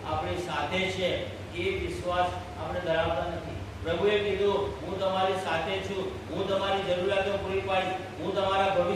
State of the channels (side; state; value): both; identical; correlation 1.00